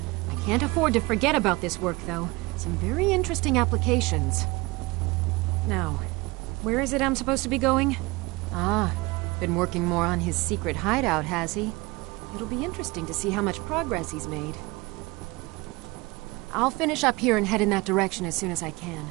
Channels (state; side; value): quieter; left; 23.4 dB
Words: I can't afford to forget about this work, though. Some very interesting applications. Now, where is it I'm supposed to be going? Ah, been working more on his secret hideout, has he? It'll be interesting to see how much progress he's made. I'll finish up here and head in that direction as soon as I can.